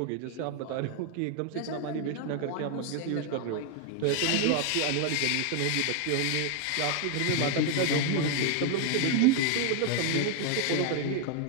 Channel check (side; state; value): both; different; correlation 0.00